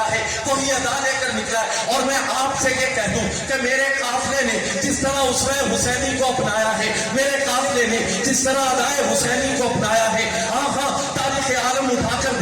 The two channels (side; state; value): both; identical; correlation 1.00